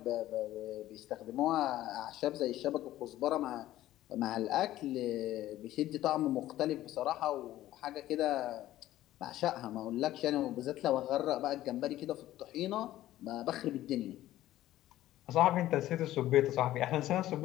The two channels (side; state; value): right; quieter; 14.4 dB